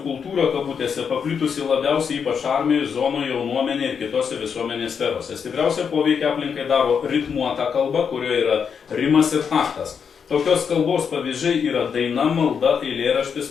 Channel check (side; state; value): right; quieter; 6.7 dB